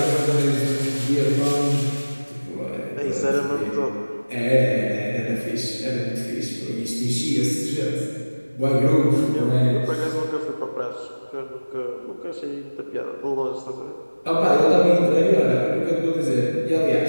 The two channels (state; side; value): inverted; both; correlation -1.00